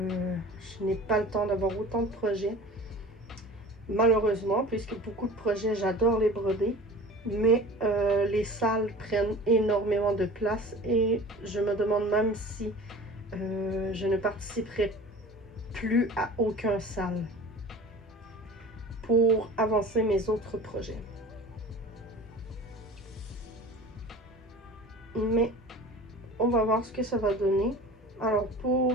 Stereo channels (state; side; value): normal; both; correlation 0.40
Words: n'ai pas le temps d'avoir autant de projets, malheureusement, puisque beaucoup de projets, j'adore les broder, mais les salles prennent énormément de place, et je me demande même si je ne participerai plus à aucun salle pour avancer mes autres projets. Mais on va voir ce que ça va donner. Alors